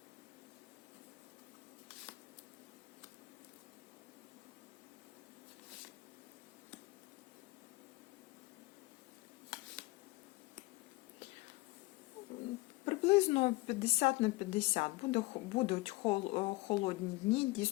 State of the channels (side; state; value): right; quieter; 21.7 dB